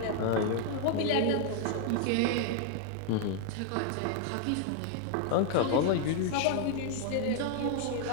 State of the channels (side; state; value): both; different; correlation 0.00